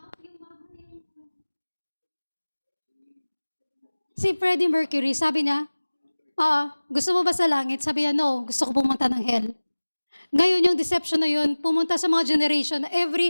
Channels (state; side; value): inverted; both; correlation -1.00